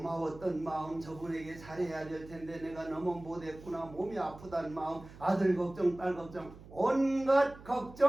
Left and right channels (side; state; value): right; noise; hum, 18 dB below the sound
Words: 마음, 저분에게 잘해야 될 텐데 내가 너무 못했구나, 몸이 아프다는 마음, 아들 걱정, 딸 걱정, 온갖